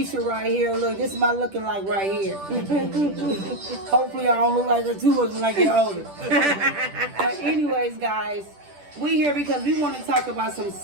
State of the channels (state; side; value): late; left; 10 ms